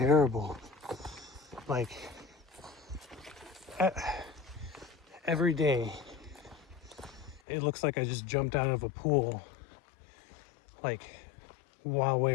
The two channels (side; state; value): right; drops out; at 7.4 s